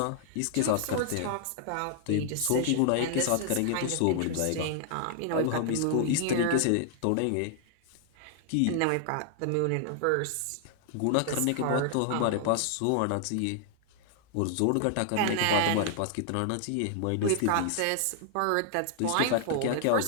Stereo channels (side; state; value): both; different; correlation 0.00